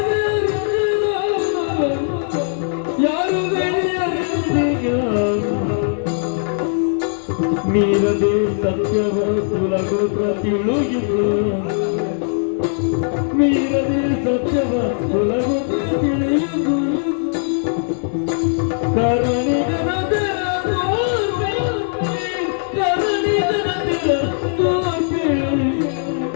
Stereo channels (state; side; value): silent; right; digital silence